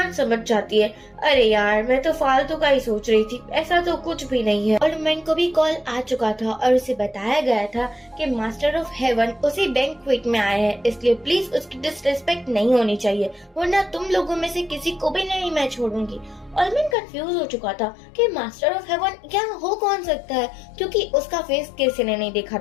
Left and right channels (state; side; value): drops out; right; at 16.9 s